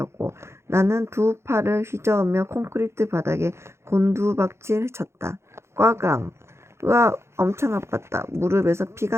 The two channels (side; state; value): left; late; 0.13 ms